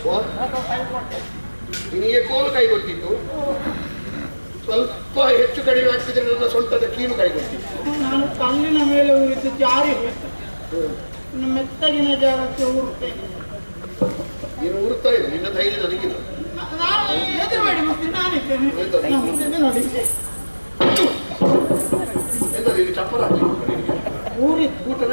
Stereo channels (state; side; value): inverted; both; correlation -1.00